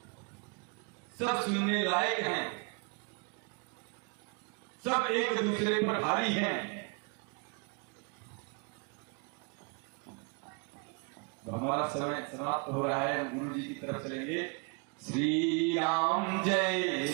सब सुनने लायक हैं, सब एक दूसरे पर भारी हैं। तो हमारा समय समाप्त हो रहा है, हम गुरु जी की तरफ चलेंगे। श्री राम जय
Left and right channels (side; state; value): left; quieter; 33.4 dB